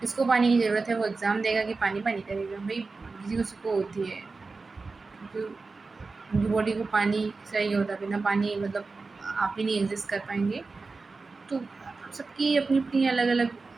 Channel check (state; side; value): quieter; left; 4.0 dB